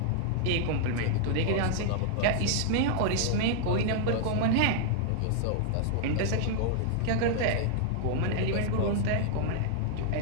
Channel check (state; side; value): different; both; correlation -0.01